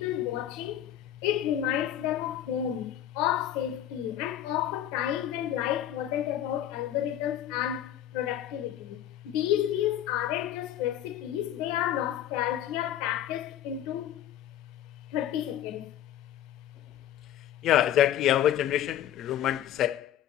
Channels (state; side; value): quieter; right; 11.4 dB